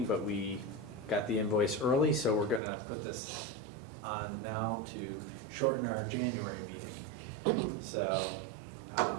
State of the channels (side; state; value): left; drops out; at 2.6 s